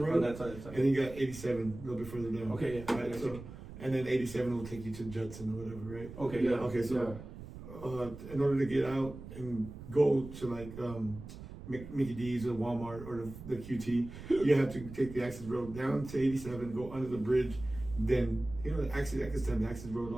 On that side. and you got 87 a little bit further down. Okay, yeah. Right, so, and then 87 will take you to Judson or whatever, right? Okay, yeah. Okay, so in order to get out and go to like Mickey D's or Walmart or the QT, you have to take the access road down to 87, go under the bridge, then the access road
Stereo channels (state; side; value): noise; right; rumble, 13 dB below the sound